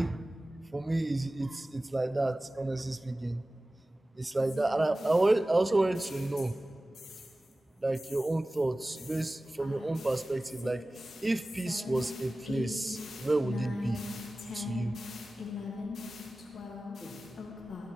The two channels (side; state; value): both; normal; correlation 0.97